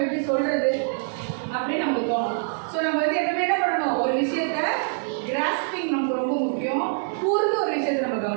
எப்படி சொல்கிறது அப்படின்னு நமக்கு தோணும். ஸோ நம்ம வந்து எப்பவுமே என்ன பண்ணணும்? ஒரு விஷயத்த கிராஸ்பிங் நமக்கு ரொம்ப முக்கியம். கூர்ந்து ஒரு விஷயத்தை நம்ம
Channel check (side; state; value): left; silent; 62 dB below the other